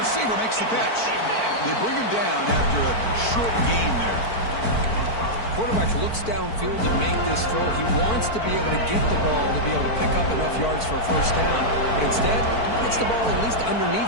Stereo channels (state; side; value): late; right; 4.5 ms